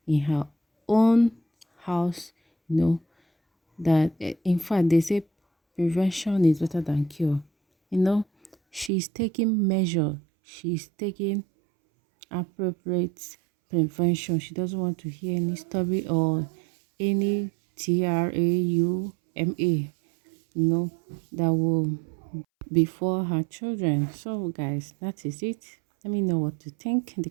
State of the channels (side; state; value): left; drops out; at 8.9 s